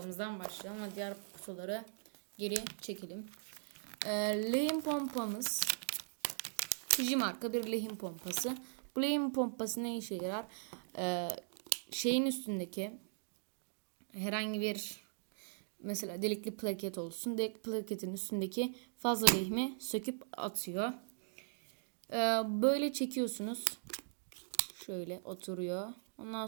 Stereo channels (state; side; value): silent; left; digital silence